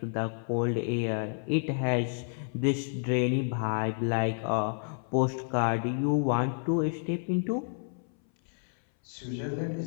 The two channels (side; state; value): right; silent; 58 dB below the other